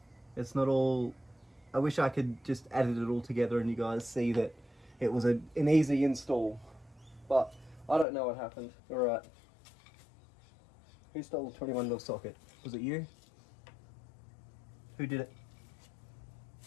It's not all. I wish I could just edit it all together and you guys see that it was an easy install, but I don't know what happened. All right. Who stole the 21mm socket? Was it you? Who did it?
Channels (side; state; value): right; drops out; at 8.1 s